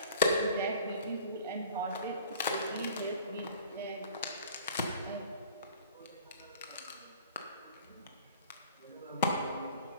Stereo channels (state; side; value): inverted; both; correlation -0.46